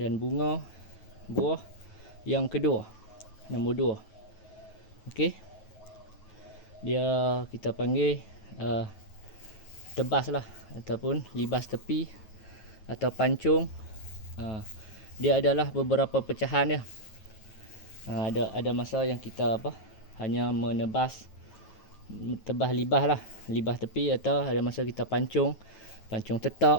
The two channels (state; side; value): late; right; 9.3 ms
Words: bunga buah yang kedua, nombor 2. Okey. Dia kita panggil tebas lah, ataupun libas tepi atau pancung. Dia adalah beberapa pecahan dia. Ada masa yang kita hanya menebas tebas libas lah, libas tepi, atau ada masa kita pancung